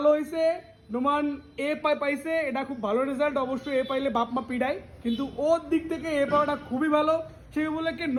হয়েছে, নোমান এ পাইছে, এটা খুব ভালো রেজাল্ট। অবশ্যই এ পাইলে বাপ মা পিড়ায়, কিন্তু ওর দিক থেকে এ পাওয়াটা খুবই ভালো। সেই বলে কি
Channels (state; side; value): identical; both; correlation 1.00